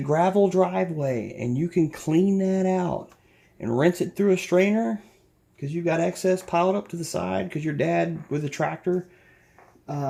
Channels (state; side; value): identical; both; correlation 1.00